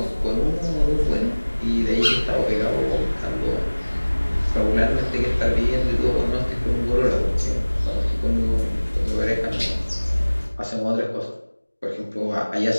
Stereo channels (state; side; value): inverted; both; correlation -1.00